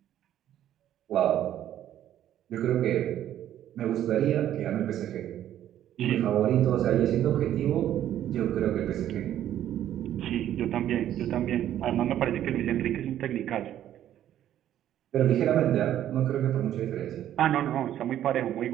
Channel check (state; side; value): quieter; left; 11.6 dB